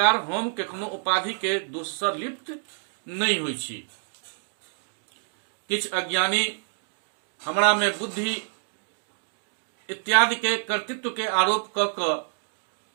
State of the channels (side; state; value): left; silent; digital silence